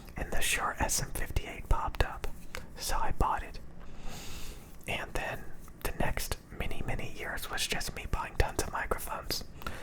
and the Shure SM58 popped up, so I bought it. And then the next many years was just me buying tons of microphones,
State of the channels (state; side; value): identical; both; correlation 1.00